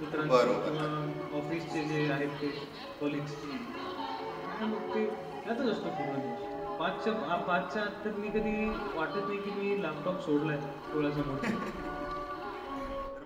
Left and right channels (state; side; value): identical; both; correlation 1.00